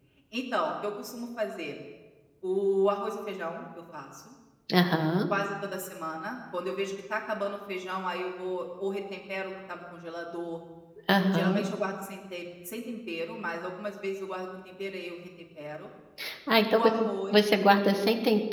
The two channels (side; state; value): both; identical; correlation 1.00